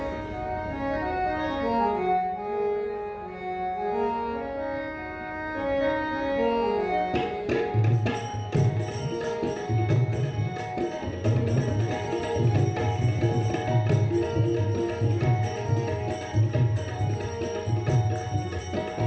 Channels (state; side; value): identical; both; correlation 1.00